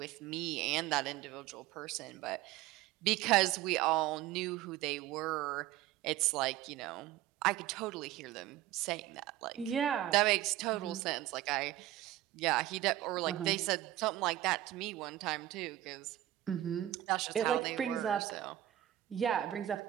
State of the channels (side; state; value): left; quieter; 14.1 dB